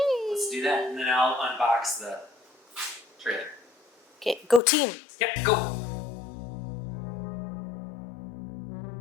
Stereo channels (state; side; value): drops out; right; at 4.6 s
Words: Let's do that, and then I'll unbox the trailer. Okay, go team. Yep, go.